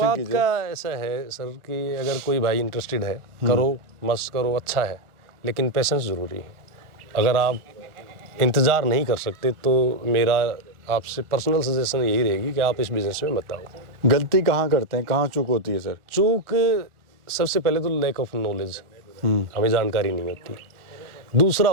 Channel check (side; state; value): left; late; 1.4 ms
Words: कीजिए। का ऐसा है सर कि अगर कोई भाई इंटरेस्टेड है, करो, मस्त करो, अच्छा है, लेकिन पेशेंस ज़रूरी है। अगर आप इंतज़ार नहीं कर सकते तो मेरा आपसे पर्सनल सजेशन यही रहेगी कि आप इस बिज़नेस में मत आओ। गलती कहाँ करते हैं, कहाँ चूक होती है सर? चूक सबसे पहले तो लैक ऑफ नॉलेज, हमें जानकारी नहीं होती। दूसरा